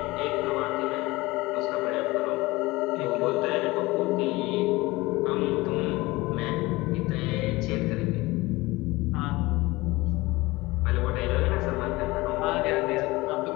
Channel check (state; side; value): quieter; right; 21.1 dB